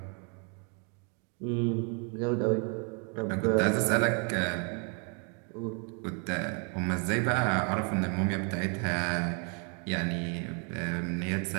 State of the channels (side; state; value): left; quieter; 38.0 dB